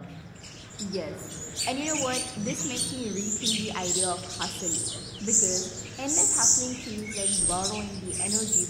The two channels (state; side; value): identical; both; correlation 1.00